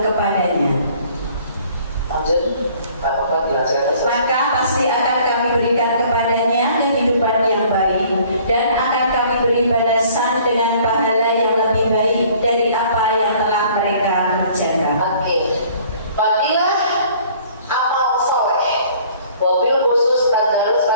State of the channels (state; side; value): inverted; both; correlation -0.55